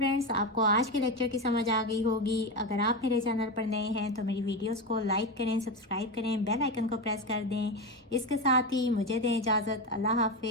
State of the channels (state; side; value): normal; both; correlation 0.16